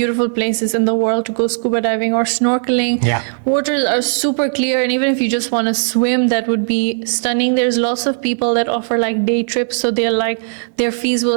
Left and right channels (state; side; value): silent; left; digital silence